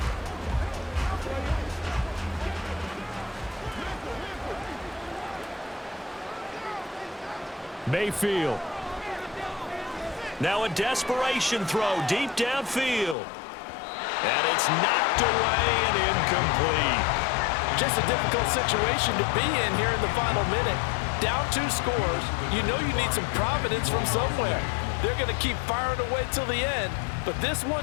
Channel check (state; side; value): drops out; right; at 13.2 s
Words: Mayfield. Now a desperation throw deep downfield. And it's knocked away and incomplete. Just a difficult situation to be in here in the final minute. Down 2 scores. You know you need some providence from somewhere. They're going to keep firing away till the end. But this